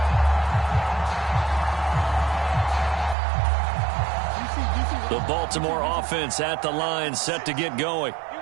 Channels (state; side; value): drops out; left; at 3.2 s